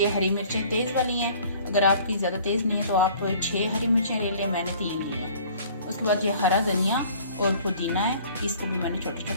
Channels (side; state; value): both; inverted; correlation -0.52